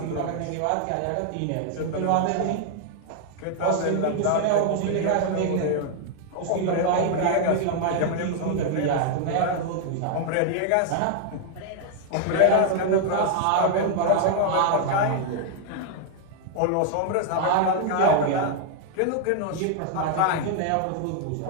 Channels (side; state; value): both; different; correlation 0.00